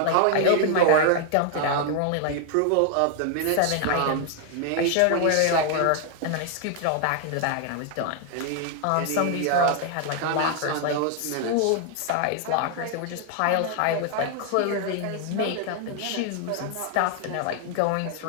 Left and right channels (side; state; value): both; different; correlation 0.00